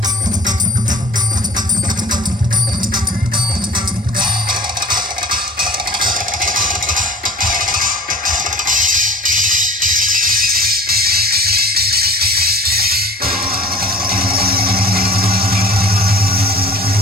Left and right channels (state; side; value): normal; both; correlation 0.43